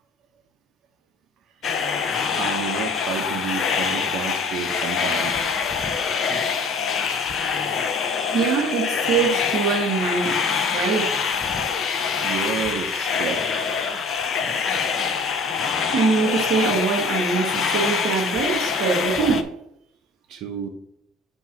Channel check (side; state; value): both; normal; correlation 0.45